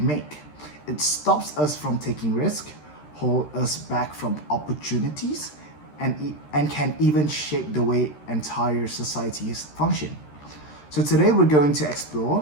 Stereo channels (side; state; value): right; late; 13 ms